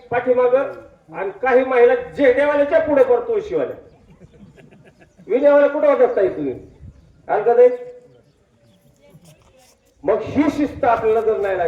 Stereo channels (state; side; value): identical; both; correlation 1.00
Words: पाठीमाग आणि काही महिला जेडेवाल्याच्या पुढे करतो शिवाल्या. विनेवाल्या कुठे होतात ताई तुम्ही का नाही? मग ही शिस्त आपल्याला जर नाही